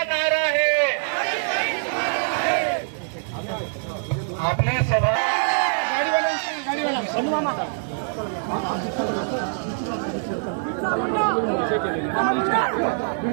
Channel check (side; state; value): left; silent; digital silence